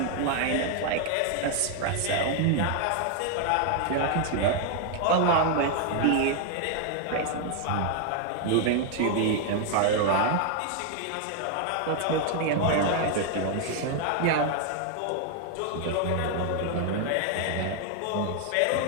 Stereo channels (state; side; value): different; both; correlation 0.00